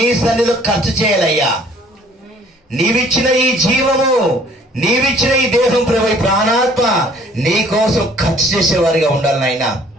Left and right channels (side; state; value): both; normal; correlation 0.57